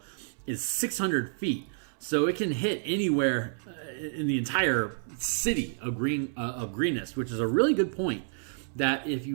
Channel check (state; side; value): silent; left; 58 dB below the other